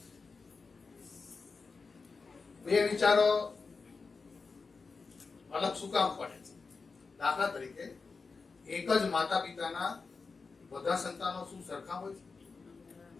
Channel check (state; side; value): quieter; right; 4.5 dB